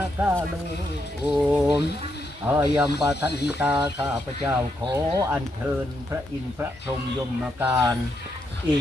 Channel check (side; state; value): both; normal; correlation 0.80